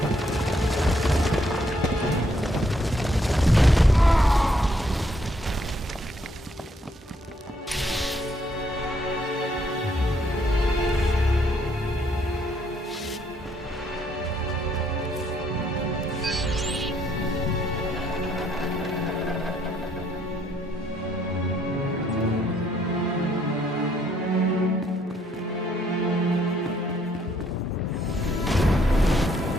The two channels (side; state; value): both; normal; correlation 0.70